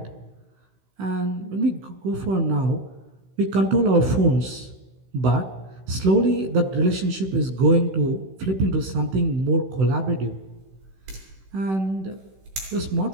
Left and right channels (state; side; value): late; left; 16 ms